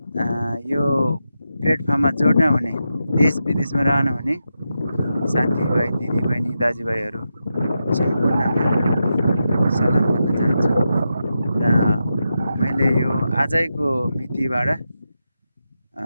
यो प्लेटफर्ममा जोड्न हुने देश विदेशमा रहनुहुने साथीभाइ दिदीबहिनी दाजुभाइहरू सम्पूर्णमा सलाम गर्न चाहन्छु र मैले यो आजैको मितिबाट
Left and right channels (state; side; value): inverted; both; correlation -0.88